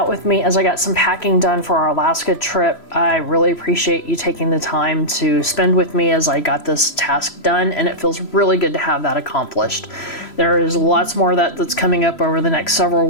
with me as I got some packing done for our Alaska trip. I really appreciate you taking the time to spend with me as I got this task done, and it feels really good to have that accomplished. There is lots more of that that's coming up over the next several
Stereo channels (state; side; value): late; right; 3.0 ms